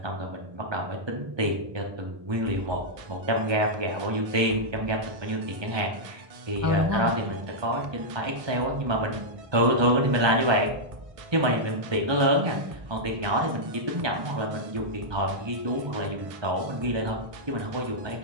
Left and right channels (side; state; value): left; late; 1.2 ms